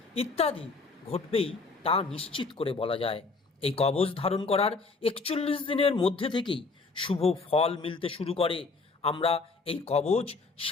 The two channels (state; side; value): quieter; right; 4.1 dB